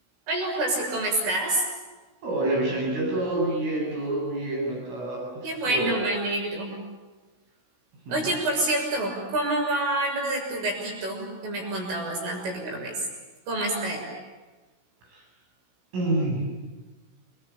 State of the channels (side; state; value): left; late; 16 ms